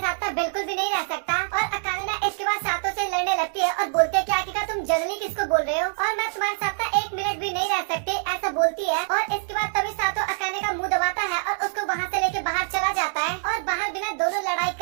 बिल्कुल भी नहीं रह सकता। और अकाने ना इसके बाद सातो से लड़ने लगती है और बोलती है क्या तुम जंगली किसको बोल रहे हो और मैं तुम्हारे साथ ना 1 मिनट भी नहीं रह सकती, ऐसा बोलती है। और इसके बाद तभी सातो अकाने का मुंह दबाता है और उसको वहाँ से लेके बाहर चला जाता है। और बाहर बिना दोनों लड़ाई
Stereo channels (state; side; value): silent; left; digital silence